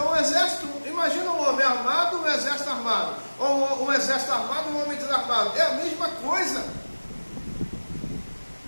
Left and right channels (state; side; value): inverted; both; correlation -1.00